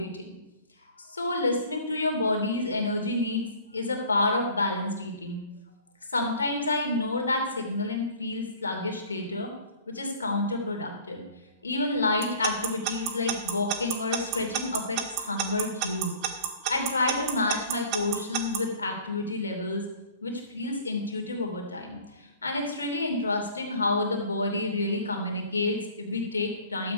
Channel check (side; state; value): both; inverted; correlation -0.47